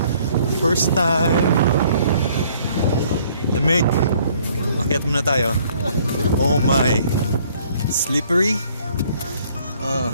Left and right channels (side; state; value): both; inverted; correlation -0.61